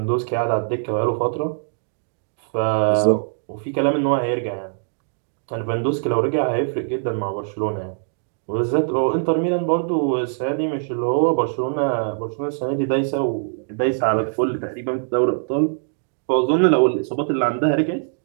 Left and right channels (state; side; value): silent; left; digital silence